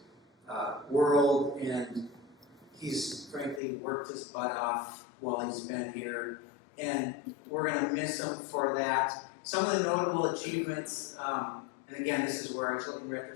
world, and he's frankly worked his butt off while he's been here, and we're going to miss him for that. Some of the notable achievements, and again, this is where I was looking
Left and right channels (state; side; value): drops out; right; at 3.6 s